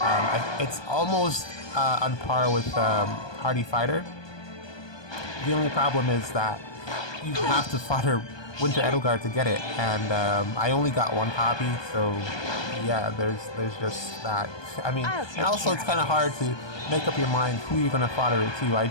It's almost on par with Hardy Fighter. The only problem is that you have to fodder Winter Edelgard to get it, and I only got 1 copy, so yeah, there's just that. I mean, and also it's kind of hard to make up your mind who you're gonna fodder it to. I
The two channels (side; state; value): right; late; 1.2 ms